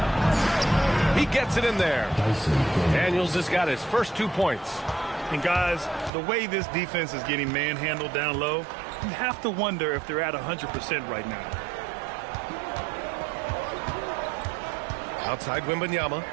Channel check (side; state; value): left; drops out; at 6.1 s